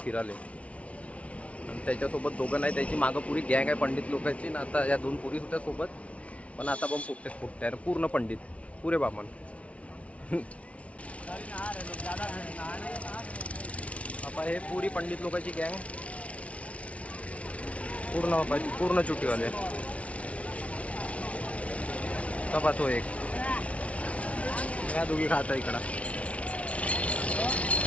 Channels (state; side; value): late; right; 0.064 ms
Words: फिराले. आणि त्याच्यासोबत दोघं नाही, त्याची मागं पुरी गँग आहे पंडित लोकांची ना. आता या 2 पोरी होत्या सोबत, पण आता पण फुटते आहे पूर्ण पंडित, पुरे बामण. आता हे पुरी पंडित लोकांची गँग पूर्ण चुटीवाले. कपा तो एक या दोघी खाता इकडं.